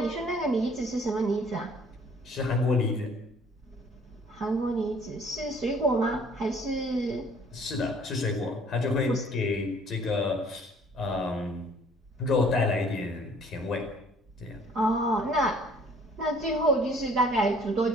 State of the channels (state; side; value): normal; both; correlation 0.56